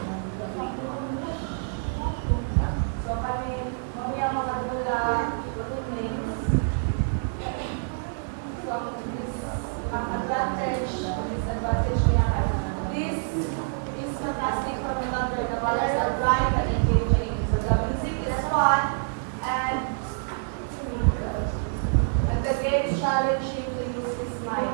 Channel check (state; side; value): silent; left; digital silence